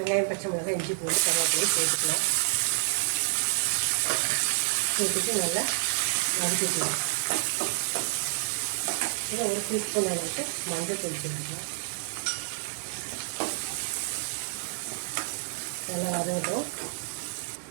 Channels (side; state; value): left; silent; digital silence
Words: பச்சை மிளகாய், இஞ்சி பூண்டு, கருவேப்பிலையை சேர்த்துக்கலாம். சேர்த்துட்டு நல்லா வதக்கிக்கலாம். இதில் ஒரு டீஸ்பூன் அளவுக்கு மஞ்சள் தூள் சேர்த்துக்கலாம். நல்லா வதங்கட்டும்.